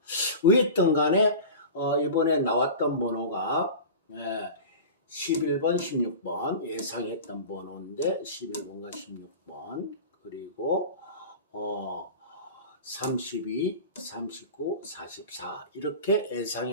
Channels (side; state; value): both; inverted; correlation -0.33